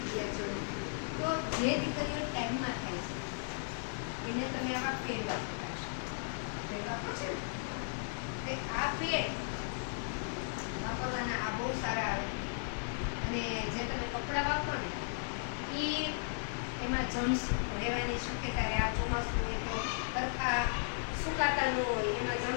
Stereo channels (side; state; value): right; silent; digital silence